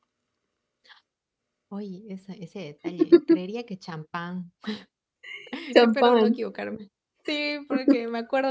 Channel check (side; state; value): both; identical; correlation 1.00